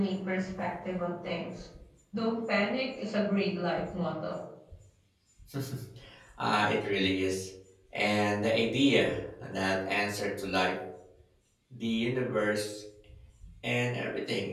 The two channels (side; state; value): both; identical; correlation 1.00